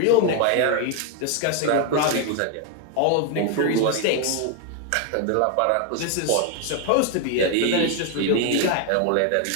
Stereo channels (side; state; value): both; different; correlation 0.00